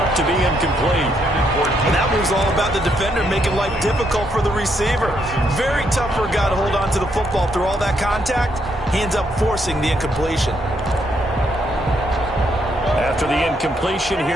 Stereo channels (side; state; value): both; normal; correlation 0.75